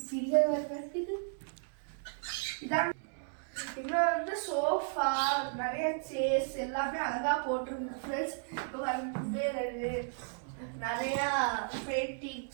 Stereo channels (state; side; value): silent; left; digital silence